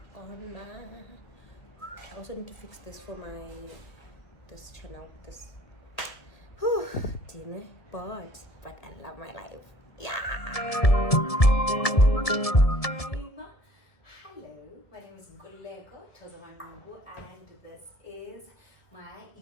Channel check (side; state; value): right; late; 1.7 ms